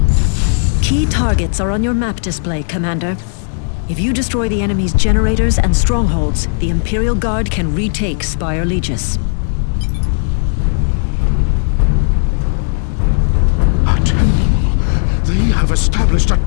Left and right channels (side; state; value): right; silent; digital silence